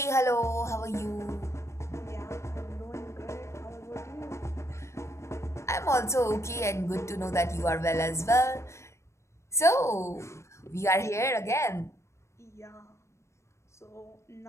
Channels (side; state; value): right; late; 0.13 ms